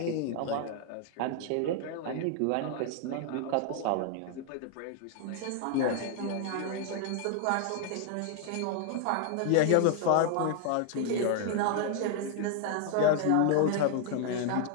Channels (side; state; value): both; different; correlation 0.00